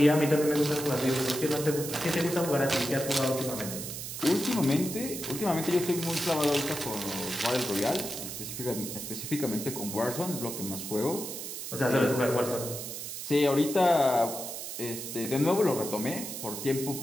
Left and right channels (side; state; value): right; noise; hiss, 7 dB below the sound